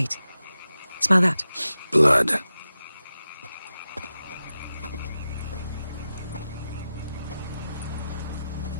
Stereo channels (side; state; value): both; inverted; correlation -0.92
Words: Smell that? Blood.